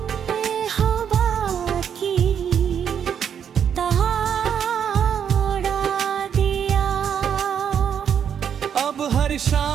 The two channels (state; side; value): quieter; left; 8.2 dB